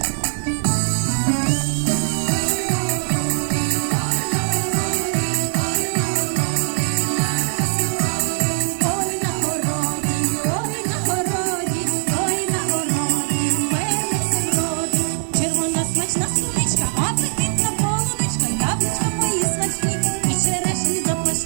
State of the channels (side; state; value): left; silent; digital silence